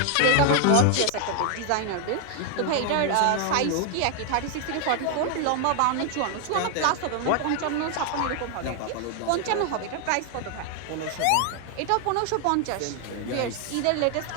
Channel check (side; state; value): both; different; correlation 0.00